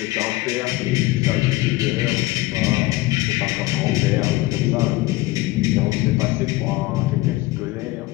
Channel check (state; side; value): quieter; right; 18.8 dB